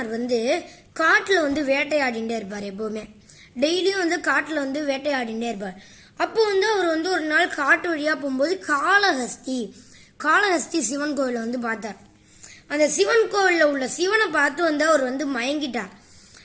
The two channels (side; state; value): both; identical; correlation 1.00